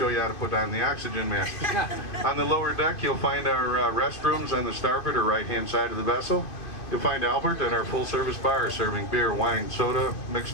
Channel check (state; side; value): late; right; 2.5 ms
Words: you how to put on the oxygen mask. On the lower deck, you'll find our restrooms on the starboard or right-hand side of the vessel. You'll find Albert at our full-service bar serving beer, wine, soda,